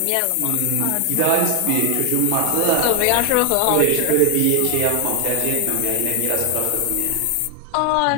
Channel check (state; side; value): different; both; correlation 0.00